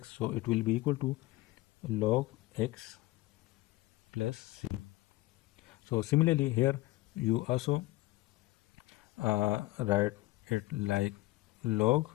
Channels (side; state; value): right; quieter; 18.8 dB